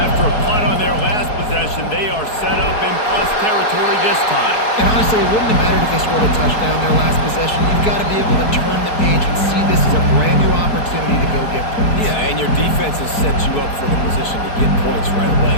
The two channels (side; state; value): right; late; 4.6 ms